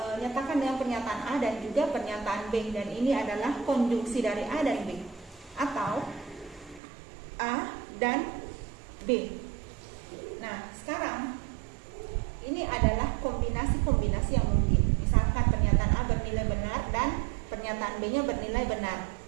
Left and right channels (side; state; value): left; drops out; at 6.8 s